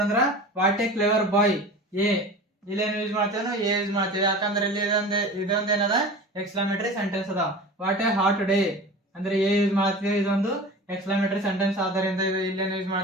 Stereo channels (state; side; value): normal; both; correlation 0.36